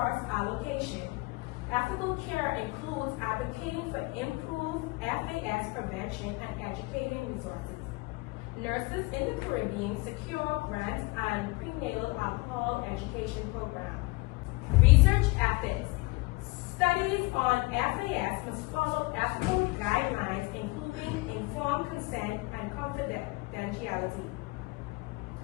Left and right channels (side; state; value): right; quieter; 24.6 dB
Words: allocation. Ethical care includes advocating for improved FAS prevention and educating resources. Nurses in the Caribbean secure grants and prenatal alcohol education programs. Research ethics. Studies on FAS must follow ethical guidelines, including informed consent and confidentiality.